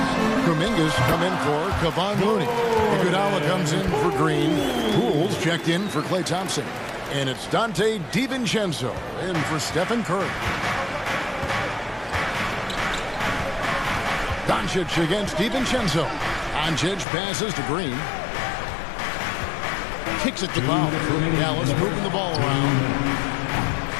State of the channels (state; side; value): drops out; right; at 17.1 s